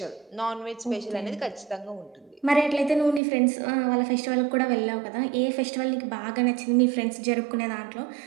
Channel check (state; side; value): drops out; left; at 3.2 s